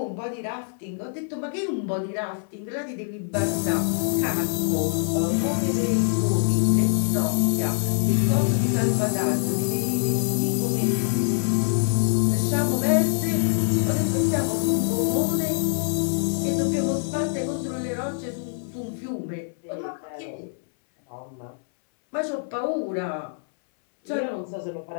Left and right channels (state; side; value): silent; right; 62 dB below the other